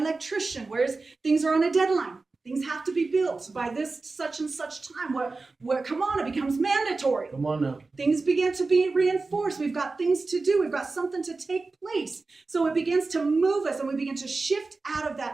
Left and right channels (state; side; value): quieter; left; 3.8 dB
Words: Things are on a deadline. Things have to be built by this such and such time. Come on, it becomes mandatory. Come on now. Things begin to be reinforced. We've got things to do. We've got something to take place. So it begins to move us, and we begin to shift out of